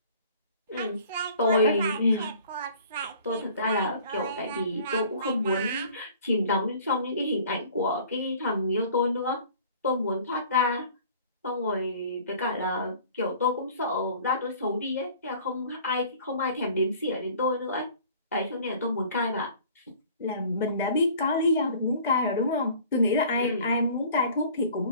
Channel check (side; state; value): both; inverted; correlation -0.49